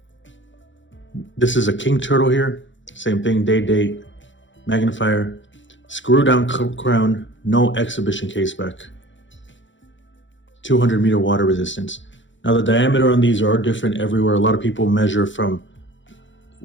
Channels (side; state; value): right; late; 0.55 ms